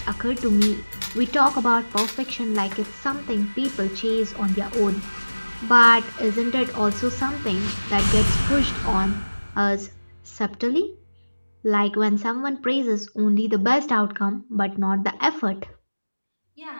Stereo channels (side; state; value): both; inverted; correlation -1.00